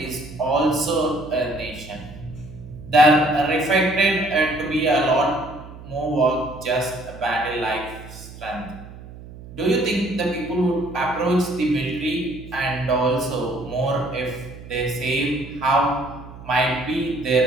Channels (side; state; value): right; noise; hum, 16 dB below the sound